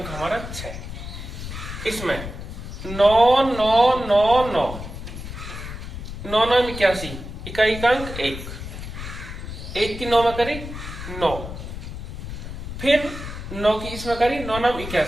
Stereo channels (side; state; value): left; noise; rumble, 9 dB below the sound